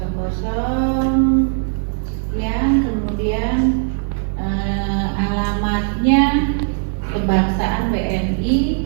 Yang kemudian alamatnya kebangsaan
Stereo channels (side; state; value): left; silent; digital silence